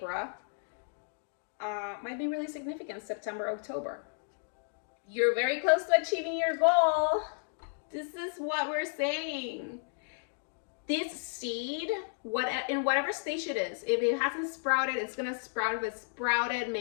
might be really significant. September, October. You're very close to achieving your goal. This is what we're saying. This seed, in whatever stage it is, if it hasn't sprouted, it's gonna sprout. If it's sprouted,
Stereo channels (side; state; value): right; silent; digital silence